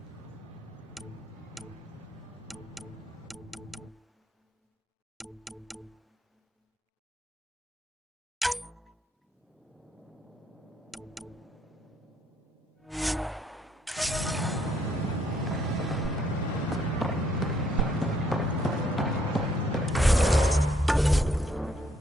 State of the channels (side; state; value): both; normal; correlation 0.69